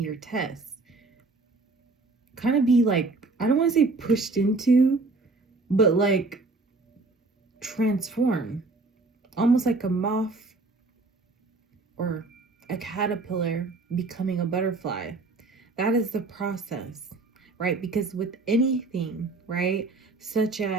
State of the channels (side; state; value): left; quieter; 3.5 dB